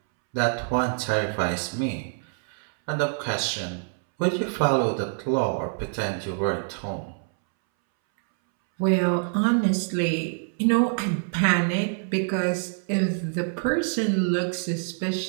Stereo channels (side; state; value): left; silent; 61 dB below the other